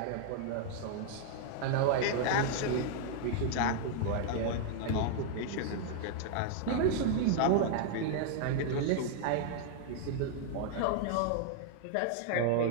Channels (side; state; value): both; different; correlation 0.00